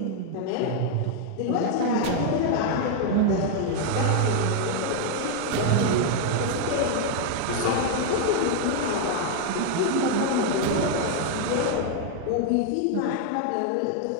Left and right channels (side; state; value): both; different; correlation 0.00